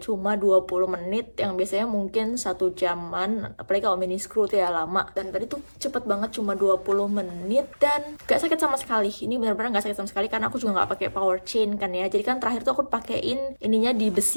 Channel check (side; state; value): both; inverted; correlation -1.00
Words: cuma 20 menit yang biasanya mungkin 1 jaman, apalagi kalau mini screw tuh ya lama. Dan tadi tuh cepet banget, cuma 20 menit dan gak sakit sama sekali. Ini benar-benar gak sakit sama sekali karena aku juga gak pakai power chain kan ya. Jadi kan terakhir tuh aku pakein ininya